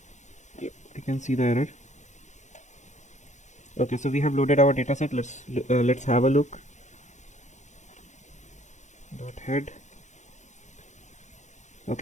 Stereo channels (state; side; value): late; right; 0.34 ms